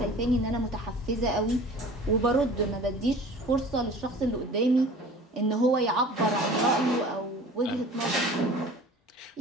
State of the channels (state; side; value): normal; both; correlation 0.43